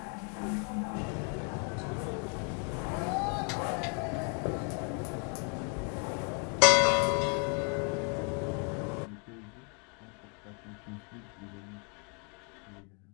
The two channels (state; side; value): quieter; right; 39.9 dB